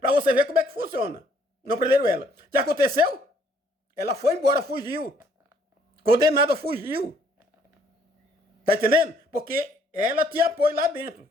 você ver como é que funciona. Não prenderam ela. O que aconteceu? Ela foi embora, fugiu. Condenada, fugiu. Tá entendendo? Porque ela tinha apoio lá dentro.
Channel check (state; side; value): normal; both; correlation 0.64